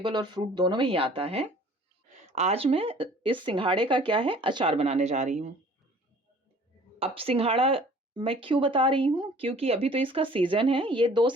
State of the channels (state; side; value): normal; both; correlation 0.51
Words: और फ्रूट दोनों में ही आता है। आज मैं इस सिंघाड़े का क्या है, अचार बनाने जा रही हूँ। अब सिंघाड़ा मैं क्यों बता रही हूँ? क्योंकि अभी तो इसका सीज़न है, ये 2